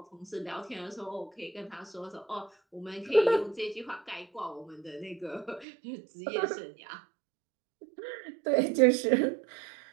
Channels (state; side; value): drops out; left; at 5.7 s